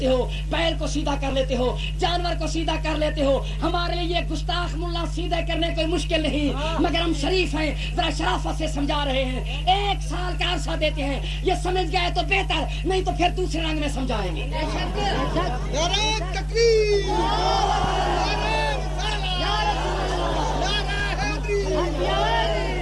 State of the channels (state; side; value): identical; both; correlation 1.00